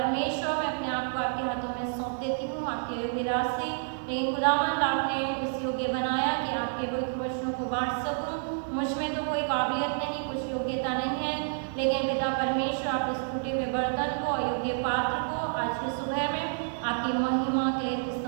मैं अपने आप को आपके हाथों में सौंप देती हूँ आपके योग्य रास्ते, लेकिन खुदावंद आपने इस योग्य बनाया कि आपके पवित्र वचनों को बांट सकूँ। मुझ में तो कोई काबिलियत नहीं, कुछ योग्यता नहीं है, लेकिन पिता परमेश्वर आप इस टूटे हुए बर्तन को, अयोग्य पात्र को आज की सुबह में आपकी महिमा के लिए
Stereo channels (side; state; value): left; silent; 58 dB below the other